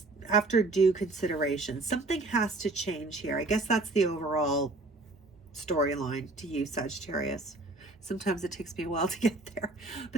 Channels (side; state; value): left; quieter; 3.0 dB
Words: After due consideration, something has to change here. I guess that's the overall storyline to you, Sagittarius. Sometimes it takes me a while to get there,